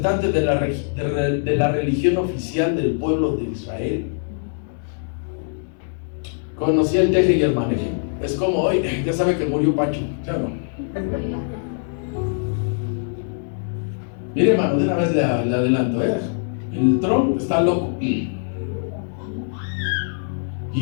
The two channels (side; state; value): right; silent; 64 dB below the other